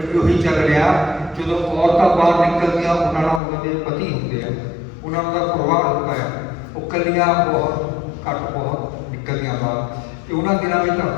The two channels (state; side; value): drops out; right; at 3.4 s